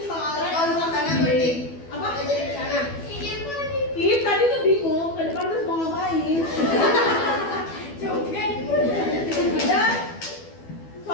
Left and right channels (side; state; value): right; late; 12 ms